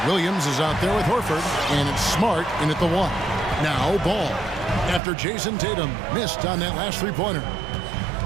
Williams is out there with Horford, and it's Smart in at the 1. Now Ball, after Jason Tatum missed on that last three-pointer.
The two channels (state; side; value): drops out; left; at 5.0 s